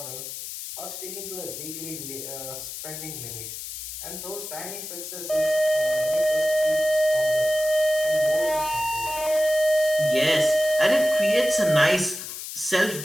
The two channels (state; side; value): noise; left; hiss, 9 dB below the sound